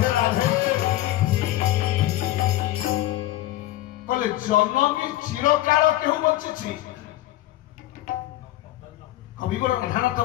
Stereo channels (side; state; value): right; quieter; 15.5 dB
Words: जनमी चिरकाल केहू बची कविवर राधानाथ